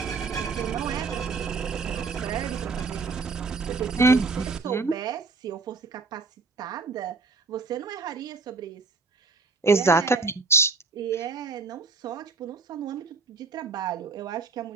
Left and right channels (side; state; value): left; quieter; 4.1 dB